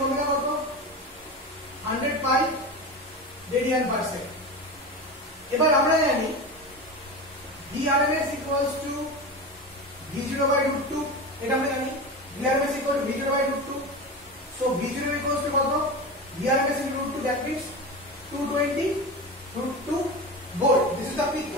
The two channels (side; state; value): both; normal; correlation 0.25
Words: omega কত? 100 পাই রেডিয়ান পার সেকেন্ড। এবার আমরা জানি VRMS equals to V0 by root 2, এটা আমরা জানি VRMS equals to V0 by root 2. So V0 equals to কত? VRMS into root 2, that means 220 root 2 volt. This is the peak